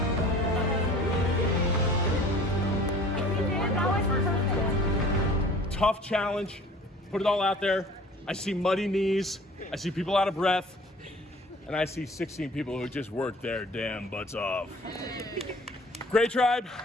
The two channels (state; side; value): normal; both; correlation 0.48